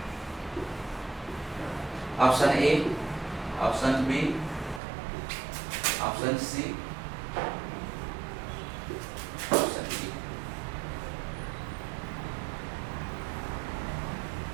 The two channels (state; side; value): drops out; left; at 4.8 s